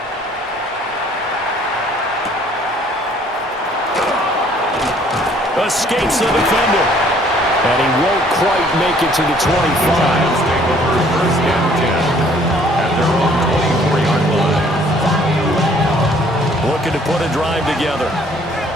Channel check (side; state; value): both; normal; correlation 0.59